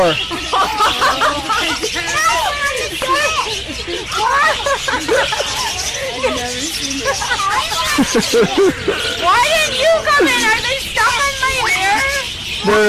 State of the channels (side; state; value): both; identical; correlation 1.00